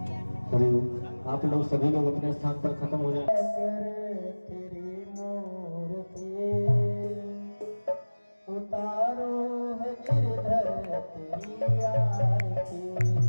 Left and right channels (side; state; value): both; inverted; correlation -1.00